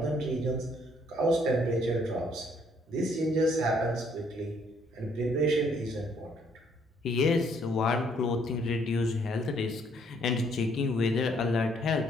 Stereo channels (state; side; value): normal; both; correlation 0.66